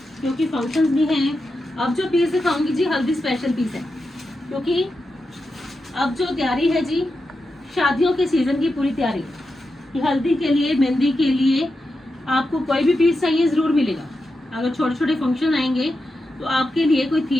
क्योंकि फंक्शंस भी हैं। अब जो पीस दिखाऊंगी जी हल्दी स्पेशल पीस है, क्योंकि अब जो तैयारी है जी शादियों के सीजन की पूरी तैयारी कि हल्दी के लिए मेहंदी के लिए आपको कोई भी पीस चाहिए जरूर मिलेगा। अगर छोटे छोटे फंक्शन आएंगे तो आपके लिए कोई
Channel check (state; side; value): normal; both; correlation 0.89